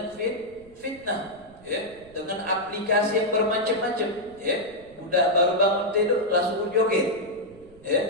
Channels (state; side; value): noise; right; rumble, 24 dB below the sound